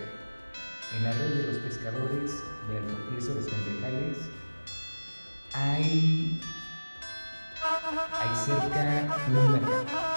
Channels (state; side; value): inverted; both; correlation -1.00